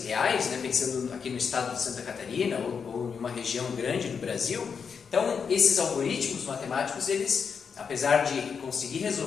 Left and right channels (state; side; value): quieter; right; 6.2 dB